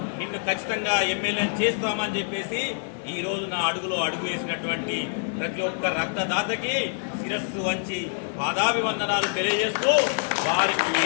నిన్ను ఖచ్చితంగా ఎమ్మెల్యేని చేస్తామని చెప్పేసి ఈరోజు నా అడుగులో అడుగు వేసినటువంటి ప్రతి ఒక్క రక్తదాతకి శిరస్సు వంచి పాదాభివందనాలు తెలియజేస్తూ, వారికి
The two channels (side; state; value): right; silent; 58 dB below the other